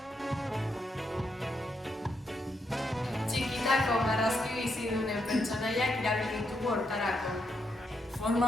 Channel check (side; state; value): both; normal; correlation 0.80